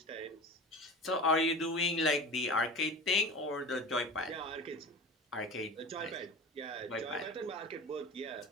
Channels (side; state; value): both; normal; correlation 0.33